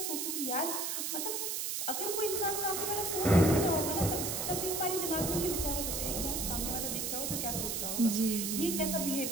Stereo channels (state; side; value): noise; right; hiss, 1 dB below the sound